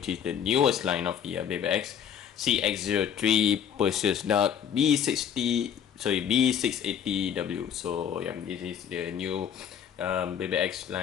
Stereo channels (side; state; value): right; quieter; 8.4 dB